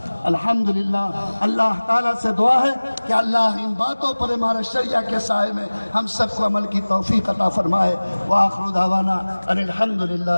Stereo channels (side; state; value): both; inverted; correlation -1.00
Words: الحمدللہ، اللہ تعالیٰ سے دعا ہے کہ اللہ ان باتوں پر ہمارے شریعہ کے سائے میں ہم سب کو عمل کی توفیق عطا فرمائے۔ وآخر دعوانا ان